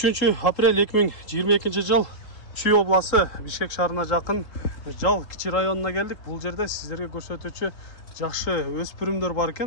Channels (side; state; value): right; late; 3.7 ms